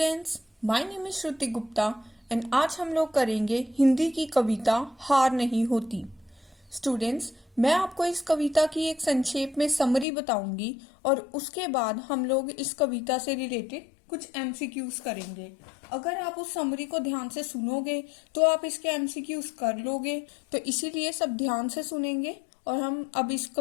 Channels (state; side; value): drops out; right; at 10.1 s